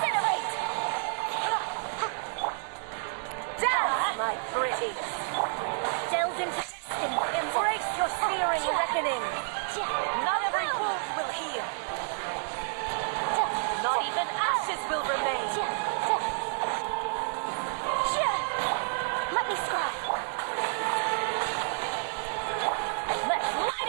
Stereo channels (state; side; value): silent; left; digital silence